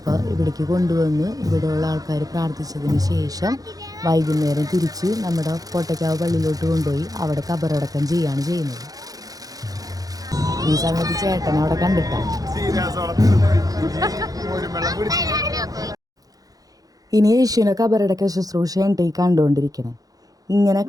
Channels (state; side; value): late; left; 0.18 ms